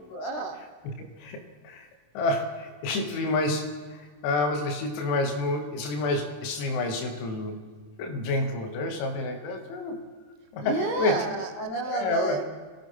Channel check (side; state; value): right; late; 27 ms